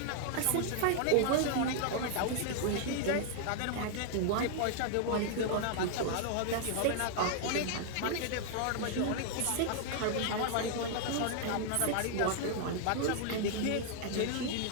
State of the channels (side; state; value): both; different; correlation -0.01